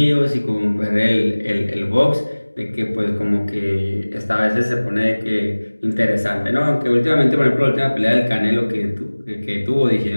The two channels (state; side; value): inverted; both; correlation -1.00